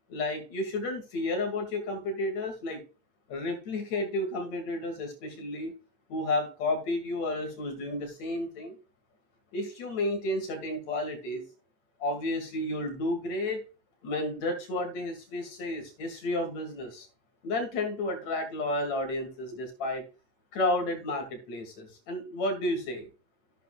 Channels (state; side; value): late; right; 8.8 ms